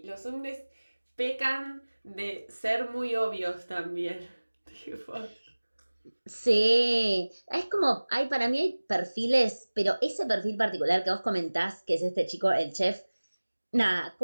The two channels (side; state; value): both; inverted; correlation -1.00